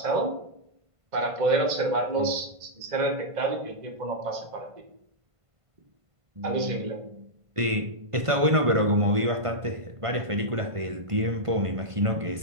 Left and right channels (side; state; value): left; late; 1.5 ms